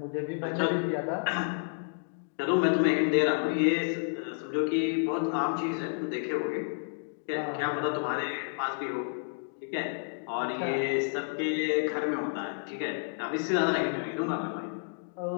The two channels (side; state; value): right; silent; digital silence